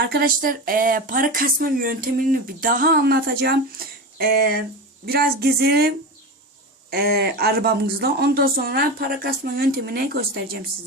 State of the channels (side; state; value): both; normal; correlation 0.24